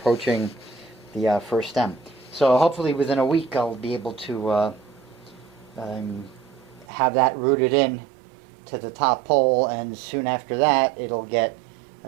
the first stem. So hopefully within a week I'll be able to have that rooted in to the top pole, and soon after that it'll get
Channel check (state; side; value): drops out; left; at 6.9 s